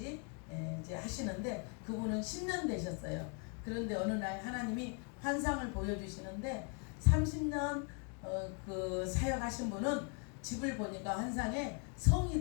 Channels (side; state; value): right; quieter; 36.2 dB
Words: 이제 하시는데 그분은 10년 되셨어요. 그런데 어느 날 하나님이 환상을 보여주시는데 30년 그 사역하신 분은 집을 보니까 환상에